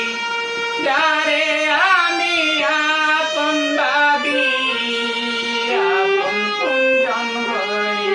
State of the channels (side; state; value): both; identical; correlation 1.00